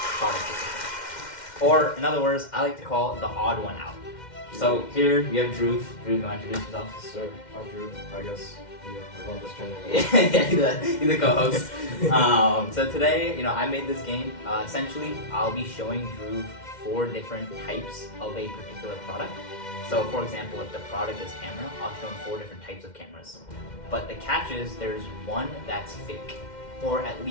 product decision. Or in other words, I like to call it the odd one out. So here you have Dhruv. Dhruv, you want to introduce yourself? Sir, I'm Drew. I guess I run this channel. Yeah, he's the co-host. So today, I made this game. Essentially, I'll be showing Dhruv 4 different types of a particular product. So for example, if the product is camera, I'll show him 4 different types of cameras. But the catch is there's one that's fake, or at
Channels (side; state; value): right; late; 2.1 ms